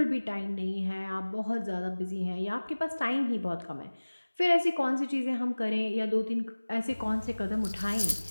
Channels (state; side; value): inverted; both; correlation -1.00